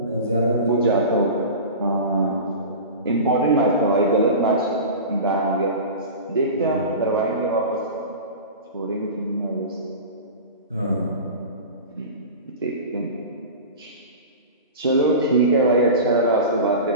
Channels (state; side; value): inverted; both; correlation -0.31